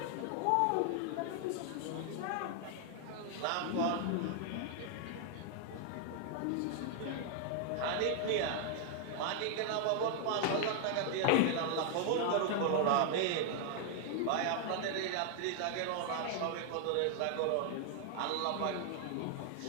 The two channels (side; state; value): both; different; correlation 0.00